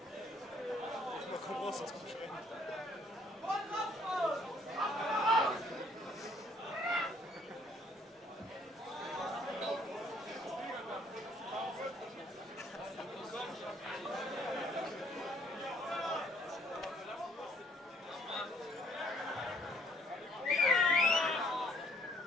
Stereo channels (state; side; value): normal; both; correlation 0.63